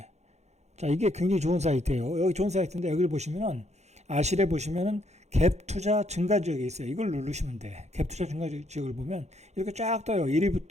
자, 이게 굉장히 좋은 사이트예요. 여기 좋은 사이트인데 여기를 보시면은 아실에 보시면은 갭 투자 증가 지역이 있어요. 이걸 누르시면 돼. 갭 투자 증가 지역을 보면 이렇게 쫙 떠요.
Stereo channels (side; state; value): left; late; 0.32 ms